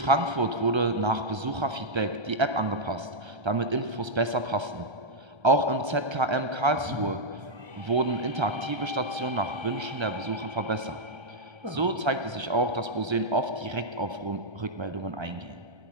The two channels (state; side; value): late; left; 1.3 ms